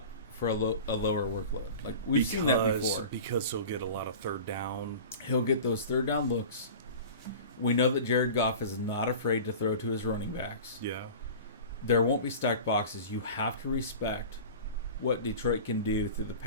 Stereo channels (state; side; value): inverted; both; correlation -0.36